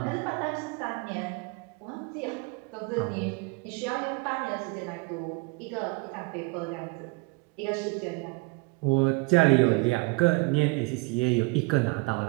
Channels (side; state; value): left; quieter; 27.3 dB